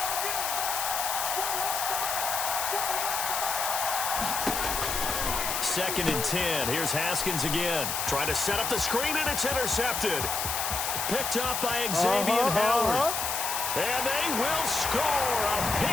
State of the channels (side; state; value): left; noise; hiss, 1 dB below the sound